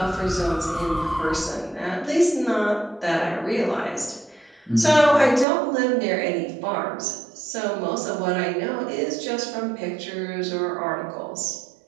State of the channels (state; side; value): drops out; left; at 5.5 s